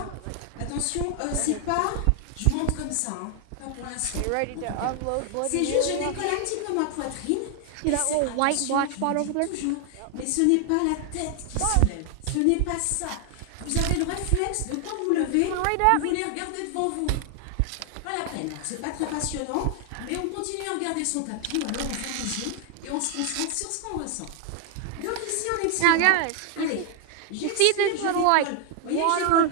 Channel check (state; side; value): different; both; correlation 0.00